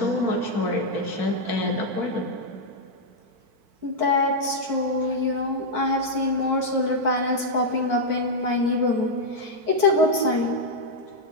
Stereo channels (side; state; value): left; late; 4.5 ms